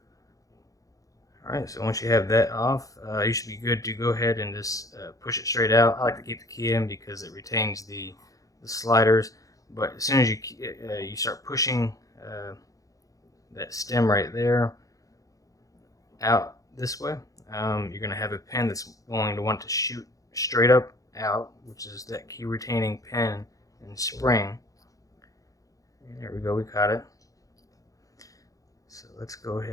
Alright, so once you have that off, you should be good to go ahead and just push it straight out. I like to keep the key in because it retains the sliders, but as soon as you start pushing that stem right there out this way, you're going to have a pin that's going to want to shoot straight up out, which is that key retaining pin and spring. And there we go, we caught it. So let's go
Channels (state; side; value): late; right; 0.17 ms